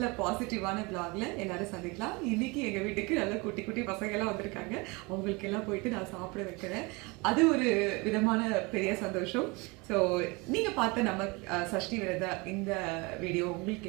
பாசிட்டிவான பிளாக்ல எல்லாரும் சந்திக்கலாம். இன்னைக்கு எங்க வீட்டுக்கு நல்ல குட்டி குட்டி பசங்க எல்லாம் வந்திருக்காங்க. அவங்களுக்கு எல்லாம் போயிட்டு நான் சாப்பிட வைக்கிறேன். அது ஒரு விதமான பெரிய சந்தோஷம். ஸோ நீங்க பார்த்த நம்ம சஷ்டி விரத இந்த வீடியோ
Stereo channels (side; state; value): left; quieter; 26.6 dB